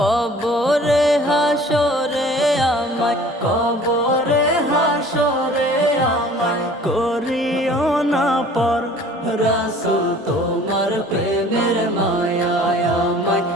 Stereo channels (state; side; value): normal; both; correlation 0.49